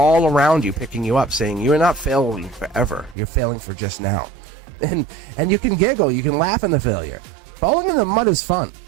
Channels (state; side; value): drops out; left; at 3.2 s